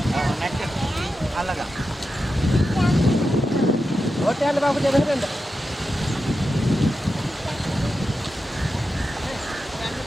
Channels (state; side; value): normal; both; correlation 0.90